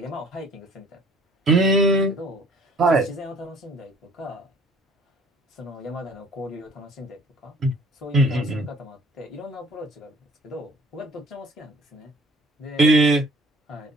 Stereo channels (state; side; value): normal; both; correlation 0.53